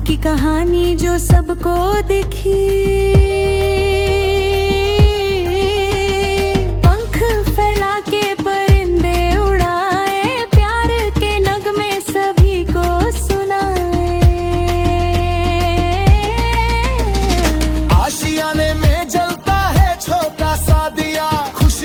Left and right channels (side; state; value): both; identical; correlation 1.00